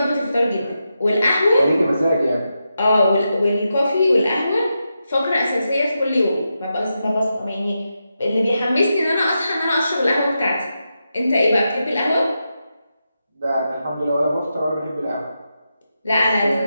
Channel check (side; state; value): both; inverted; correlation -0.87